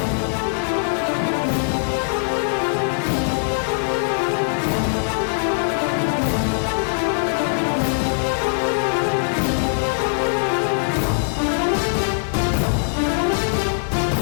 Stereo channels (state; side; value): silent; right; digital silence